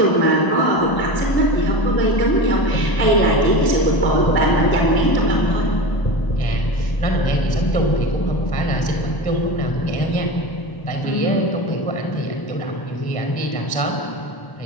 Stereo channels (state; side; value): late; right; 1.1 ms